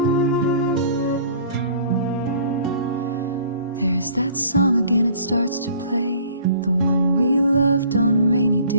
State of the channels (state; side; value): inverted; both; correlation -0.51